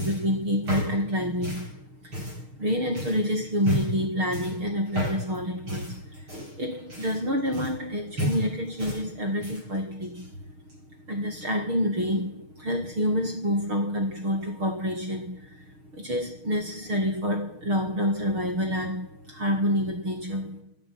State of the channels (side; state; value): left; late; 6.5 ms